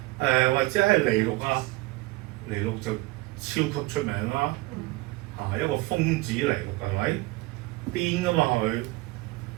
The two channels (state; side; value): quieter; left; 20.9 dB